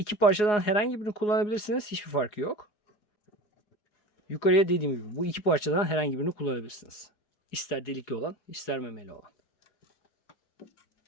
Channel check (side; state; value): right; late; 4.8 ms